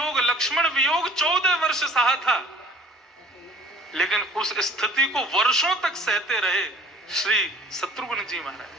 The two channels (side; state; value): both; normal; correlation 0.50